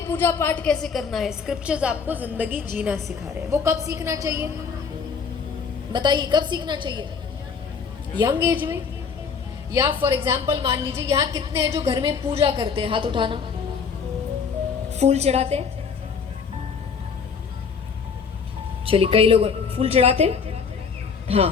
पूजा पाठ कैसे करना है, स्क्रिप्चर्स आपको जिंदगी जीना सिखा रहे हैं। वो कब सीखना चाहिए बताइए? कब सीखना चाहिए? यंग एज में? या फॉर एग्जाम्पल मान लीजिए यहाँ कितने हैं जो घर में पूजा करते हैं? हाथ उठाना। फूल चढ़ाते हैं? चलिए, कई लोग फूल चढ़ाते हैं।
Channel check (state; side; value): quieter; right; 5.8 dB